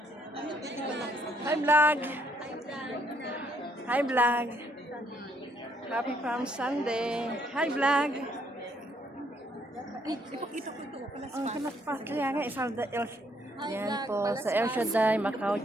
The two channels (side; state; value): both; normal; correlation 0.70